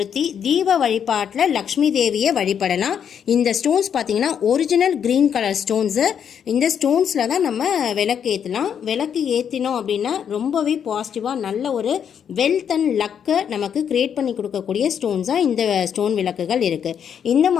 தீப வழிபாட்டில் லக்ஷ்மி தேவியை வழிபடலாம். இந்த ஸ்டோன்ஸ் பார்த்தீங்கன்னா ஒரிஜினல் க்ரீன் கலர் ஸ்டோன்ஸு. இந்த ஸ்டோன்ஸில் தான் நம்ம விளக்கு ஏற்றலாம். விளக்கு ஏற்றினோம் அப்படின்னா ரொம்பவே பாசிட்டிவாக நல்ல ஒரு வெல்த் அண்ட் லக்கை நமக்கு க்ரியேட் பண்ணி கொடுக்கக்கூடிய ஸ்டோன்ஸாக இந்த ஸ்டோன் விளக்குகள் இருக்குது. இந்த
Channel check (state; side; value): quieter; right; 8.1 dB